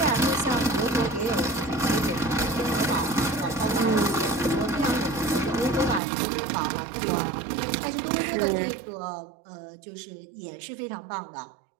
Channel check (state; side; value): drops out; left; at 6.0 s